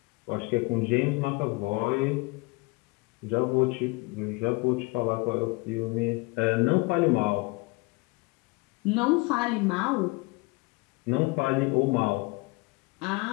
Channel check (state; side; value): quieter; right; 26.0 dB